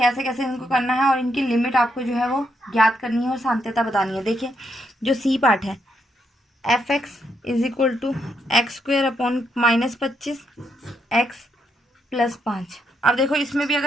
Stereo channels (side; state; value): both; normal; correlation 0.79